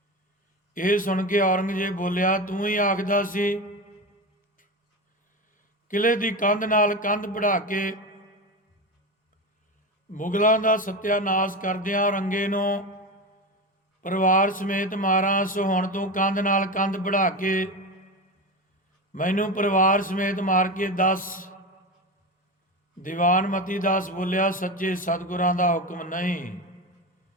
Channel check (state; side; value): normal; both; correlation 0.22